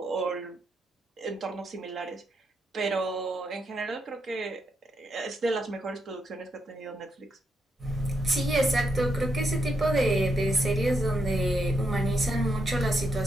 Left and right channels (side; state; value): both; normal; correlation 0.81